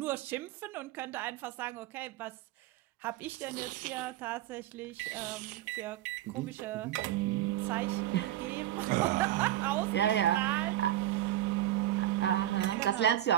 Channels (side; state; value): left; quieter; 13.5 dB